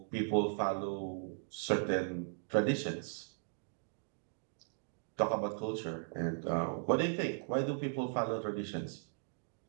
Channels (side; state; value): left; silent; digital silence